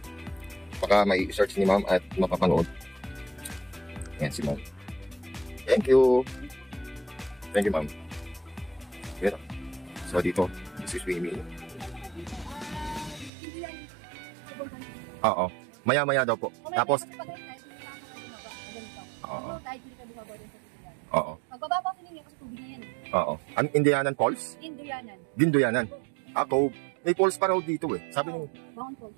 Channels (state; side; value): drops out; left; at 13.3 s